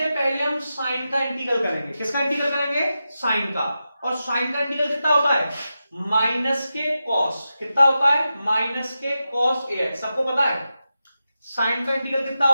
पहले हम साइन का इंटीग्रल करेंगे, किसका इंटीग्रल करेंगे, साइन का, और साइन का इंटीग्रल कितना होता है, माइनस के कॉस, कितना होता है, माइनस के कॉस ax, सबको पता है साइन का इंटीग्रल कितना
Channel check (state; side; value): inverted; both; correlation -0.91